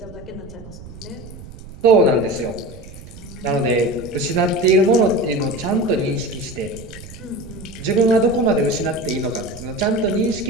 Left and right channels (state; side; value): noise; right; rumble, 16 dB below the sound